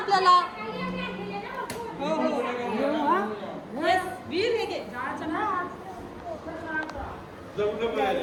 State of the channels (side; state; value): both; identical; correlation 1.00